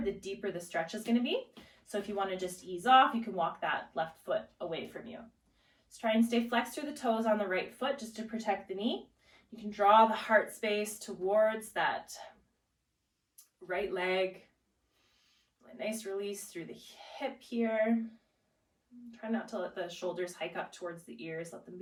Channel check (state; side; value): identical; both; correlation 1.00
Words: the deeper the stretch is going to be. So if you want to just ease off, you can walk that left foot away from you. Just try and stay flexed through the toes on the right foot just to protect the knee. You can draw the heart space towards that right leg. A nice release through the hip here. Try not to let the shoulders hike up towards the ears. Let them